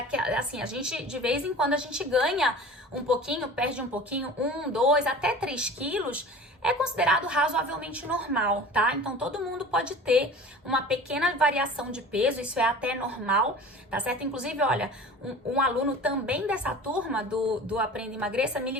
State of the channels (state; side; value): normal; both; correlation 0.40